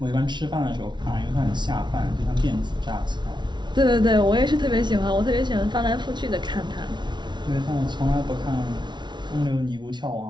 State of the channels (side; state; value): left; late; 0.22 ms